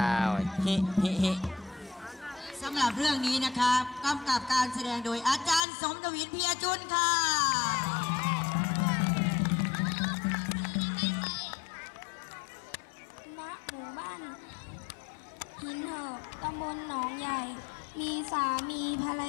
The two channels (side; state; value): right; drops out; at 5.6 s